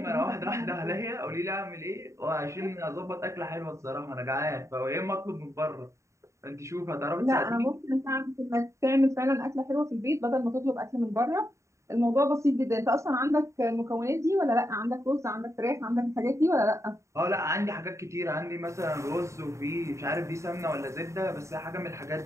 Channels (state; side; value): late; left; 0.14 ms